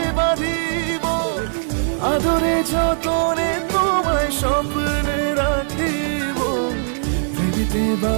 বাঁধিব, আদরে যতনে তোমায় স্বপ্নে রাখিব। প্রেমিতে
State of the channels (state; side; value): silent; left; digital silence